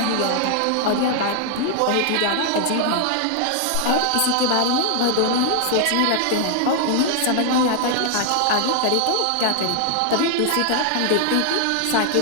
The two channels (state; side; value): different; both; correlation 0.00